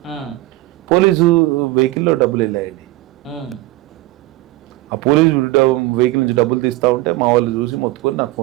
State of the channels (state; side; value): quieter; left; 18.9 dB